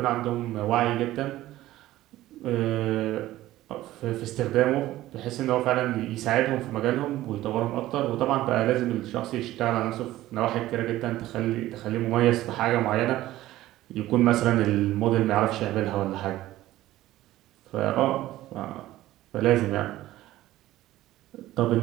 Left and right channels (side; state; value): left; quieter; 15.4 dB